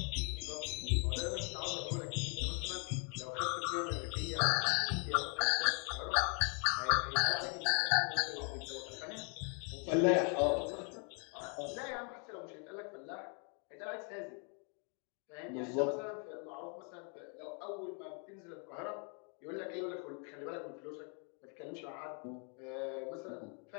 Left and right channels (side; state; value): right; quieter; 38.8 dB